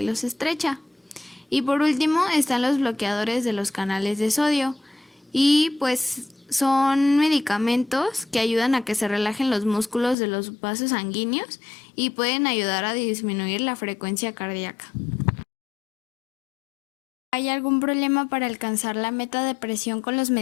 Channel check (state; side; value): drops out; right; at 10.2 s